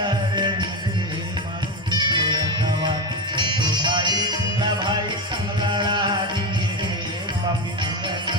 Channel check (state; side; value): normal; both; correlation 0.16